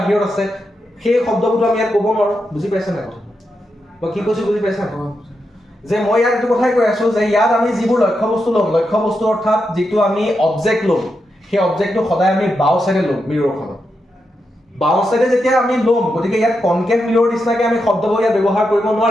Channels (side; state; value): both; normal; correlation 0.86